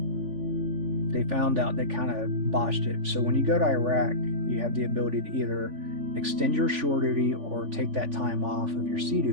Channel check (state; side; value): late; left; 3.5 ms